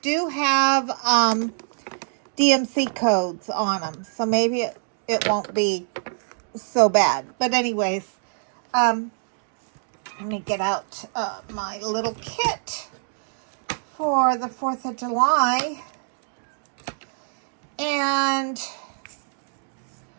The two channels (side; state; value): left; silent; digital silence